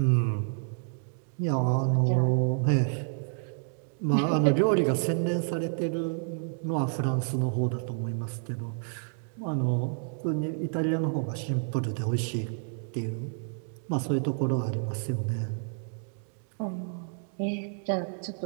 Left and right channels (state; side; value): silent; left; 58 dB below the other